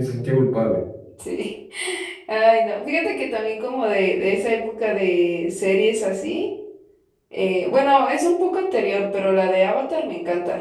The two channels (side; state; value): both; identical; correlation 1.00